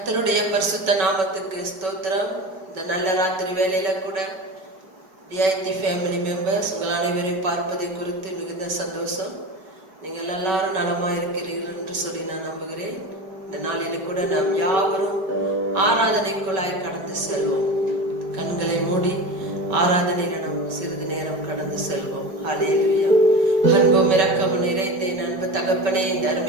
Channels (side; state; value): left; late; 5.2 ms